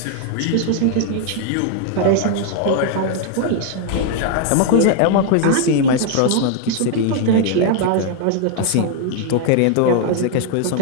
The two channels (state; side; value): different; both; correlation 0.00